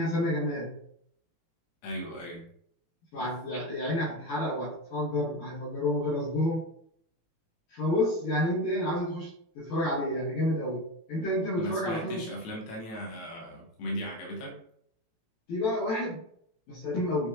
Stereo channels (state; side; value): late; right; 18 ms